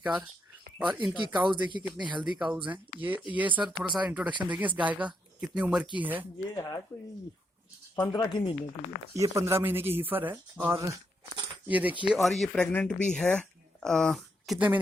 और इनकी काउज देखिए कितनी हेल्दी काउज हैं। ये सर थोड़ा सा इंट्रोडक्शन देखिए इस गाय का, कितनी उम्र की है। ये है कोई 15 की महीने की है। ये 15 महीने की हीफर है। और ये देखिए, और ये प्रेग्नेंट भी है। कितने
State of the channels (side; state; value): both; normal; correlation 0.79